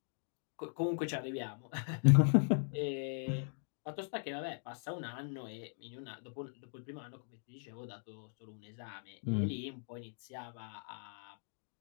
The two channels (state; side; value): silent; right; digital silence